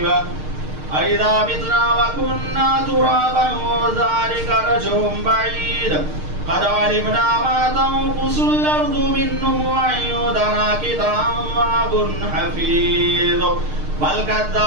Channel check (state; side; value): late; left; 6.5 ms